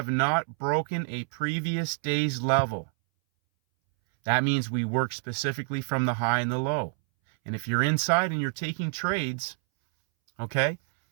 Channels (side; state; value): left; silent; 60 dB below the other